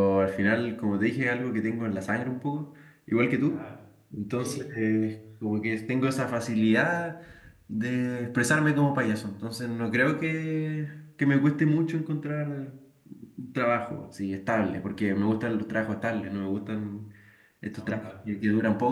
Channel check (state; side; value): identical; both; correlation 1.00